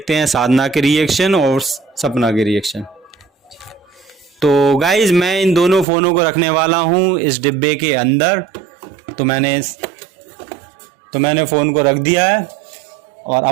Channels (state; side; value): drops out; left; at 5.9 s